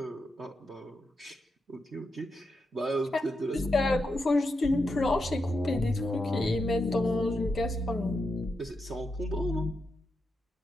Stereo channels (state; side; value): normal; both; correlation 0.86